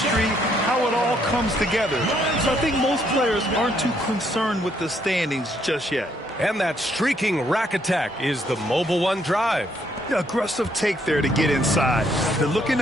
how it all comes together. So I think most players aren't too concerned with the standings just yet. And that streaking rack attack is the Mobile One drive. The aggressive take there to get inside. They're looking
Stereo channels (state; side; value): normal; both; correlation 0.71